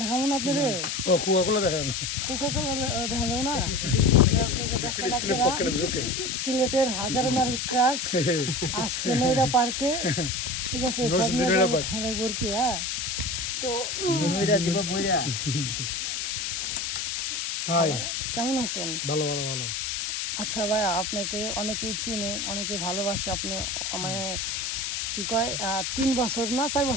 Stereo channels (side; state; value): left; noise; hiss, 2 dB below the sound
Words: না আপনারে? ও কোকাকোলা দেখান কোকাকোলা দেখা যাবে না? ফিলিস্তিনের পক্ষের বিরুদ্ধে সিলেটের হাজারো নারী ক্রাশ আসছে নয়ডা পার্কে। ঠিক আছে, সব নিয়ে নয়ডা যাবো পার্ক। ঠান্ডায় ভর্তি। হ্যাঁ, তো নৈরা দিব বইরা। হাই কেমন আছেন? ভালো ভালো ভালো। আচ্ছা ভাই, আপনাকে অনেকেই চিনে, অনেকেই ভালোবাসে। আপনি মানে কি কয় 3 বছর না 4